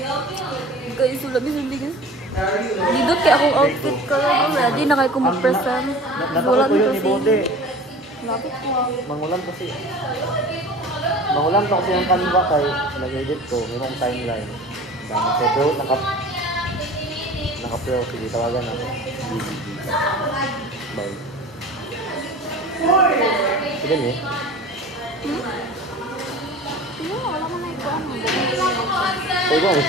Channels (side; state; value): both; normal; correlation 0.40